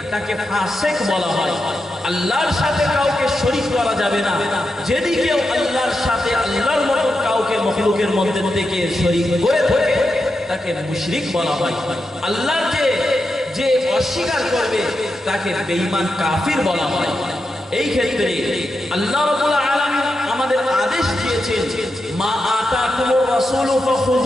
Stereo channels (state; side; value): normal; both; correlation 0.88